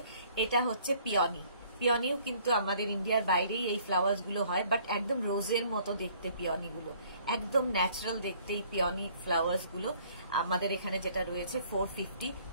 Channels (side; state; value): both; inverted; correlation -0.59